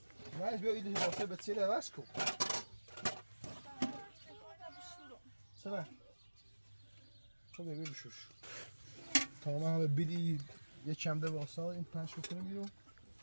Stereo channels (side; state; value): both; inverted; correlation -1.00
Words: نایز بیا ایدی واسه به چیله واسه کو سلام خب ببین بشوش تمام همه بیلی یه چمده واسه این پنج کنیم بیرون